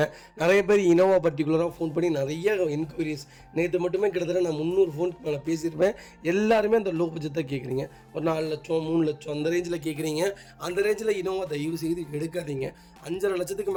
நிறைய பேர் இனோவா பர்டிகுலராக ஃபோன் பண்ணி நிறைய என்கொயரிஸ். நேற்று மட்டுமே கிட்டத்தட்ட நான் 300 ஃபோனுக்கு மேலே பேசியிருப்பேன். எல்லாருமே அந்த லோ பட்ஜெட் தான் கேட்குறீங்க. ஒரு 4 லட்சம் 3 லட்சம் அந்த ரேஞ்சில் கேட்குறீங்க. அந்த ரேஞ்சில் இனோவா தயவு செய்து எடுக்காதீங்க. 5.5 லட்சத்துக்கு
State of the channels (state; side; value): identical; both; correlation 1.00